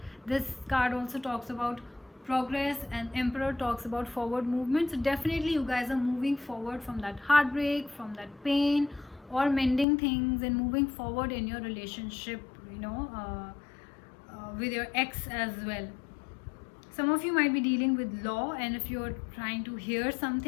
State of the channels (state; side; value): drops out; right; at 9.9 s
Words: this card also talks about progress, and Emperor talks about forward movement. So definitely you guys are moving forward from that heartbreak, from that pain, or mending things and moving forward in your relationship, with your ex as well. Some of you might be dealing with law, and if you're trying to hear